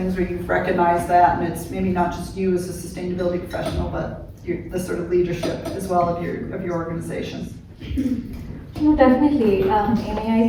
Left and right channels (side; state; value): both; identical; correlation 1.00